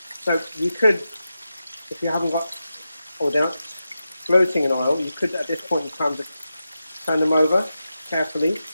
So you could, if you haven't got, or they're not floating in oil, you could at this point in time just turn them over carefully.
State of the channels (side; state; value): both; inverted; correlation -0.90